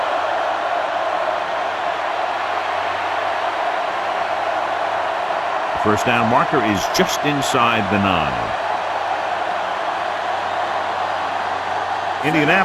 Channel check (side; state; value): both; identical; correlation 1.00